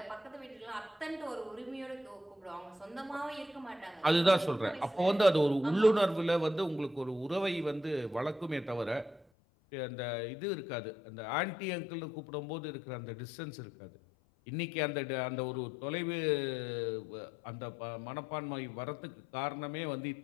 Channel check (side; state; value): right; drops out; at 9.2 s